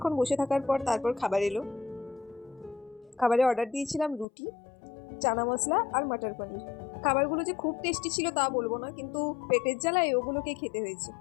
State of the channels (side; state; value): right; drops out; at 4.2 s